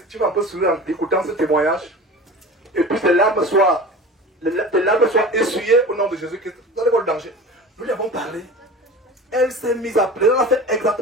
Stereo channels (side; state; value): both; normal; correlation 0.35